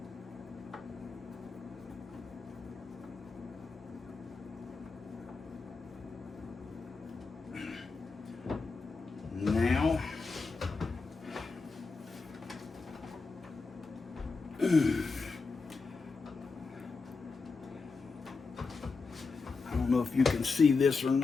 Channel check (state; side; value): quieter; right; 4.4 dB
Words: Now, I don't know if you can see this or